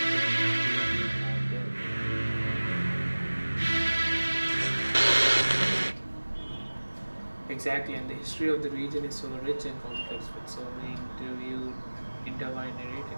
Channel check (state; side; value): inverted; both; correlation -1.00